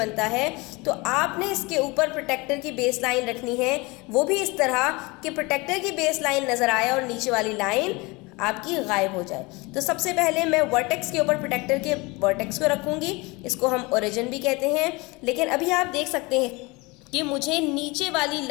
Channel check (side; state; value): right; quieter; 25.0 dB